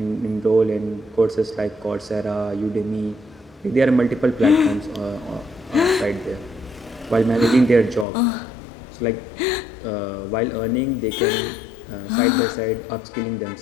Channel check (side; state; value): right; drops out; at 8.1 s